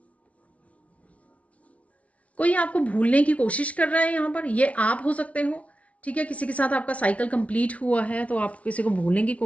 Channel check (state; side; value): late; right; 0.065 ms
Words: कोई आपको भूलने की कोशिश कर रहा है यहाँ पर, ये आप हो सकते हो। ठीक है, किसी के साथ आपका साइकिल कंप्लीट हुआ है, तो आप किसी को भूलने की